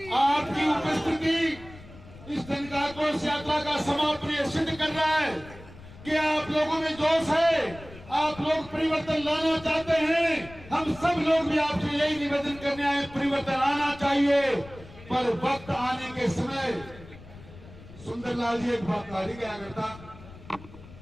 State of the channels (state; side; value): noise; left; rumble, 18 dB below the sound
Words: आपकी उपस्थिति इस दिन का आक्रोश यात्रा का समापन ये सिद्ध कर रहा है कि आप लोगों में जोश है, आप लोग परिवर्तन लाना चाहते हैं। हम सब लोग भी आपसे यही निवेदन करने आए, परिवर्तन आना चाहिए, पर वक्त आने के समय सुंदरलाल जी एक बात कार्य क्या करता,